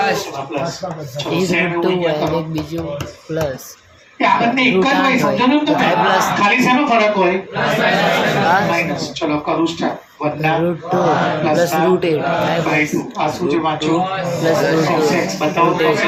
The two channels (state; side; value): identical; both; correlation 1.00